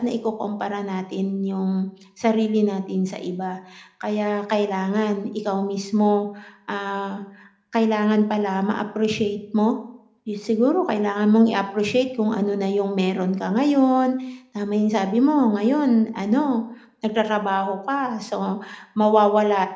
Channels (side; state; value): both; identical; correlation 1.00